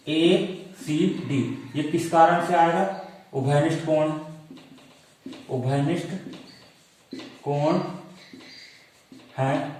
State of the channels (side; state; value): both; identical; correlation 1.00